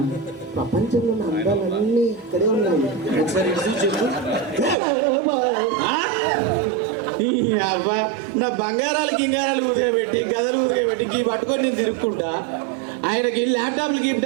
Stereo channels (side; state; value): left; drops out; at 4.8 s